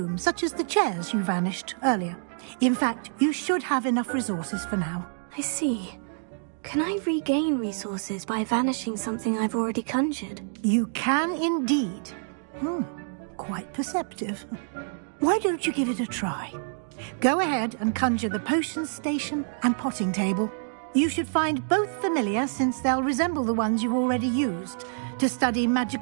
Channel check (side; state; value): left; silent; digital silence